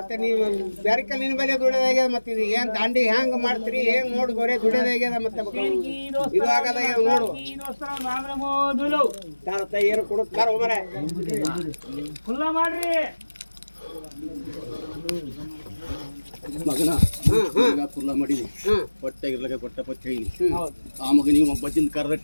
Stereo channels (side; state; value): both; inverted; correlation -1.00